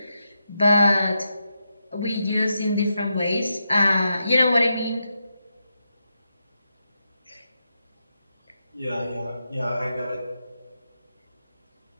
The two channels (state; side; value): inverted; both; correlation -0.85